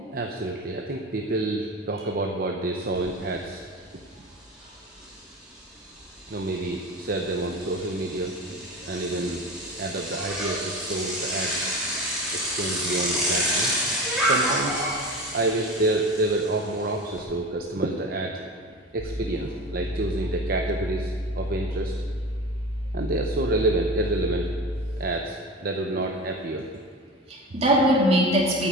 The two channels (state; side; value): normal; both; correlation 0.30